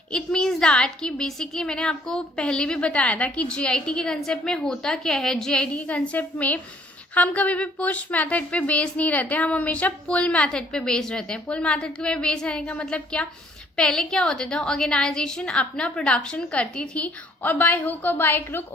It means that कि basically मैंने आपको पहले भी बताया था कि GIT के concept में होता क्या है। जीआईटी के कंसेप्ट में हम कभी भी पुश मेथड पे बेस नहीं रहते, हम हमेशा पुल मेथड पे बेस रहते हैं। पुल मेथड पे बेस रहने का मतलब क्या, पहले क्या होता था, ऑर्गेनाइजेशन अपना प्रोडक्शन करती थी और बाय हुक और बाय क्रुक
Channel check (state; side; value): normal; both; correlation 0.61